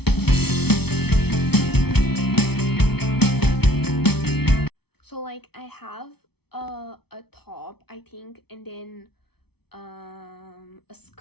So like I have a top, I think, and then a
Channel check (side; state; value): right; late; 0.97 ms